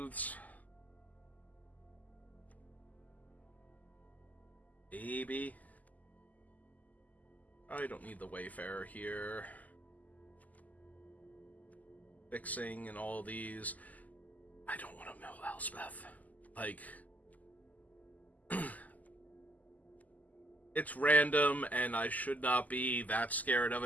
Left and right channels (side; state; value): right; late; 0.079 ms